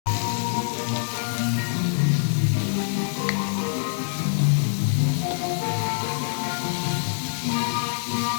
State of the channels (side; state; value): right; silent; digital silence